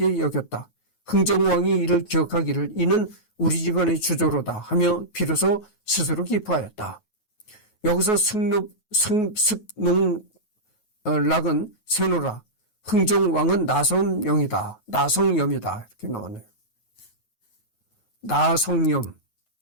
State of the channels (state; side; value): late; right; 9.3 ms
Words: 여겼다. 흥정왕이 이를 기억하기를 이는 우리 집안의 주조로다 하며 비로소 스스로 기뻐하였다. 여기서 승농락은 세노라, 흥정왕은 나성염이다. 나성염이다. 이렇게 나왔네요. 나성염.